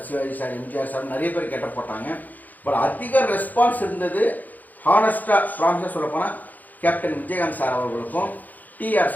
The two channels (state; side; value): late; right; 0.082 ms